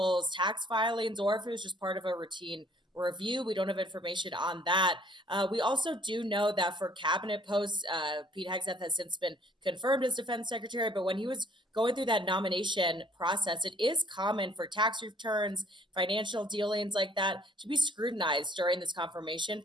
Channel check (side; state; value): both; normal; correlation 0.58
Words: tax filings or if it was just part of a routine review. We don't have information on that. We also do know that for cabinet posts, Pete Hegseth has since been confirmed as defense secretary. But when he was going through that nomination process, it is common for tax returns, financial dealings like that to be scrutinized during this confirmation